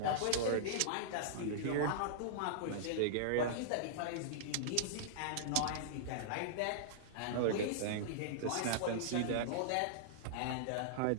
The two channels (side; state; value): both; different; correlation -0.02